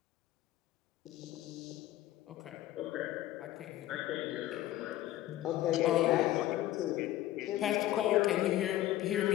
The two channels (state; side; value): quieter; right; 14.6 dB